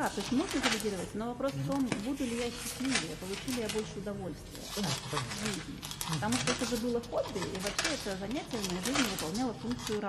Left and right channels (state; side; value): identical; both; correlation 1.00